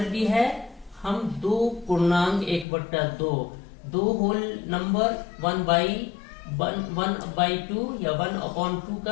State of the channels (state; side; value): drops out; right; at 2.7 s